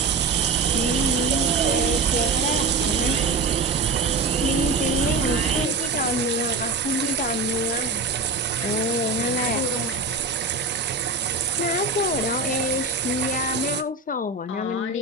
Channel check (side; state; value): left; quieter; 3.6 dB